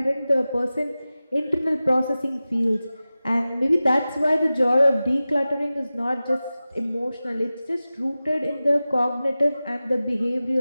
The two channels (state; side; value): inverted; both; correlation -0.96